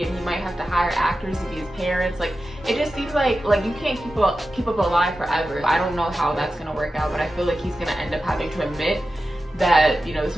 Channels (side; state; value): both; normal; correlation 0.92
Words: and he might have to hire actors to be his parents. Like, it just seems like you can't keep up alive forever. I don't know how that's gonna work out, but I feel like he's gonna end up having to admit that, you know, this